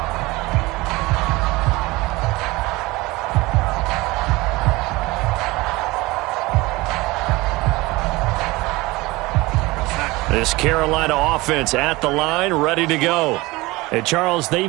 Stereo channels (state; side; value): quieter; left; 21.6 dB